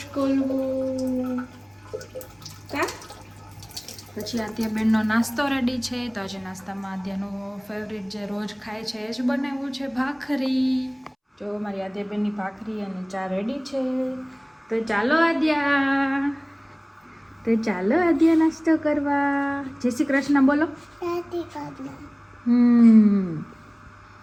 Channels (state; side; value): identical; both; correlation 1.00